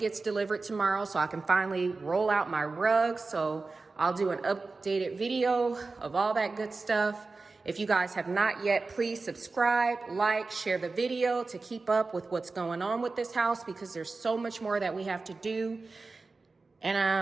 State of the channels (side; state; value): left; quieter; 3.8 dB